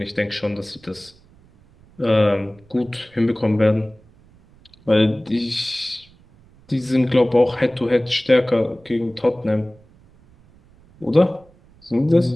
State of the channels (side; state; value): right; noise; rumble, 28 dB below the sound